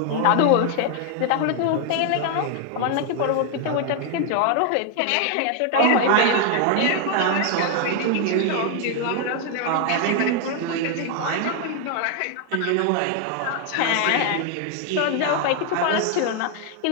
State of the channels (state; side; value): different; both; correlation 0.00